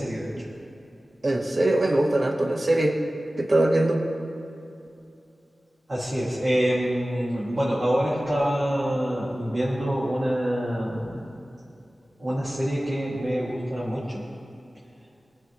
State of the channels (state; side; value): normal; both; correlation 0.96